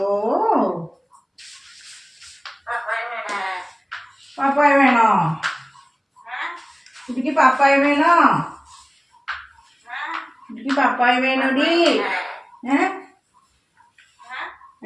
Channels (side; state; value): both; identical; correlation 1.00